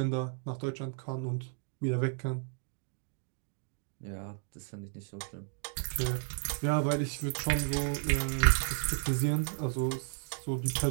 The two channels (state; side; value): silent; left; 56 dB below the other